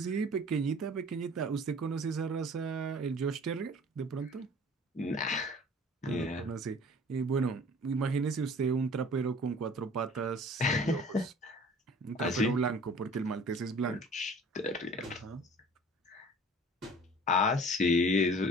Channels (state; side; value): normal; both; correlation 0.47